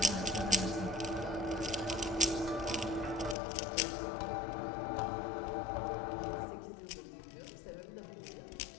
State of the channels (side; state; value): right; drops out; at 3.4 s